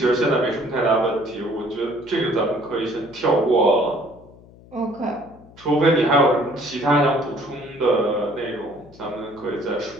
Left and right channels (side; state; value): left; noise; hum, 23 dB below the sound